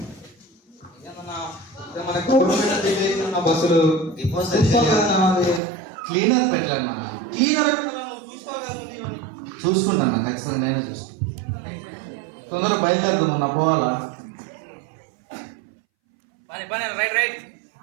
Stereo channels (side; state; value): left; drops out; at 5.6 s